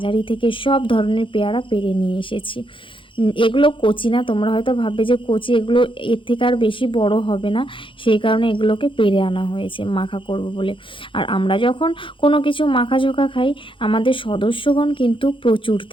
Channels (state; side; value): late; right; 0.25 ms